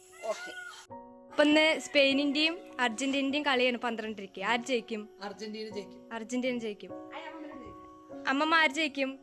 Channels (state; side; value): identical; both; correlation 1.00